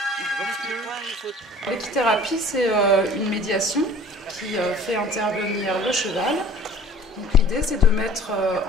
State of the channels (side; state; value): both; normal; correlation 0.48